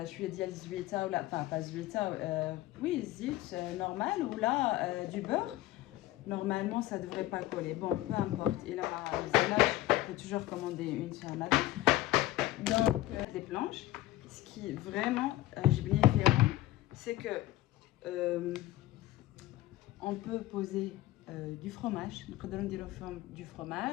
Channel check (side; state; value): right; quieter; 16.0 dB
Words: je lui ai dit, Zuita, ou là, enfin, pas Zuita, oui, zit normal, ou là, du beurre. Normalement, ça ne devrait pas coller. Bon, peu importe. Et là, je peux toujours commander une sur la Donc, les planches. Ce qui est vraiment, j'ai bien différent, c'est que on peut poser du fromage. Du